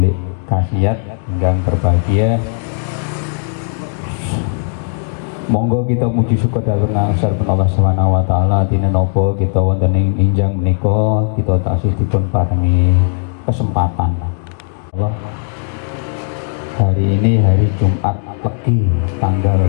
Kasiat ingkang berbahagia. Monggo kita muji syukur dhateng asripun Allah Subhanahu wa taala dina napa kita wonten ing injang menika kita taksih dipun paringi kesempatan. Allah, hari ini hari Jumat Legi tanggal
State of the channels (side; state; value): right; silent; 67 dB below the other